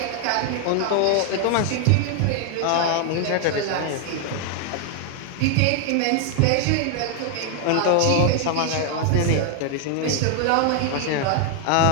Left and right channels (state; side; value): different; both; correlation 0.00